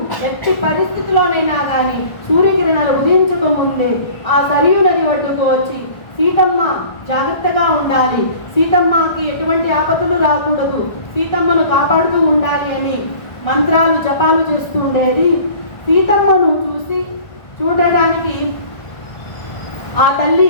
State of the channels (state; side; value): late; right; 1.3 ms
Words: ఎట్టి పరిస్థితిలోనైనా కానీ సూర్యకిరణాలు ఉదయించక ముందే ఆ సరియు నది ఒడ్డుకు వచ్చి సీతమ్మ జాగ్రత్తగా ఉండాలి, సీతమ్మకి ఎటువంటి ఆపదలు రాకూడదు, సీతమ్మను కాపాడుతూ ఉండాలి అని మంత్రాలు జపాలు చేస్తూ ఉండేది. సీతమ్మను చూడడానికి ఆ తల్లి